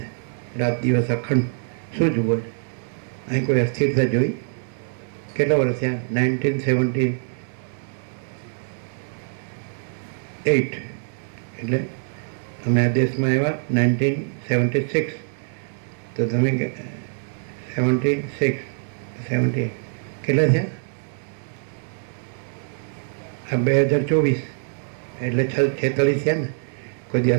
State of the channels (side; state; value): left; silent; 63 dB below the other